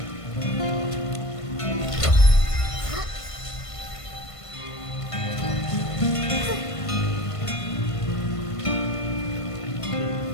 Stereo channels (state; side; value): late; right; 1.5 ms